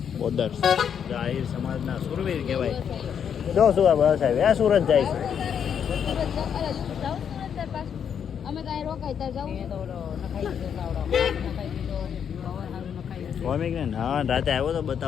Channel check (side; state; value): right; quieter; 8.0 dB